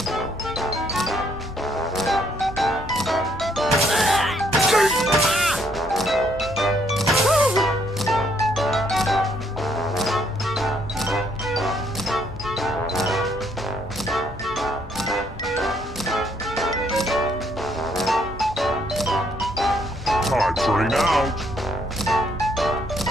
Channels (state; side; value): normal; both; correlation 0.70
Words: Time's running out.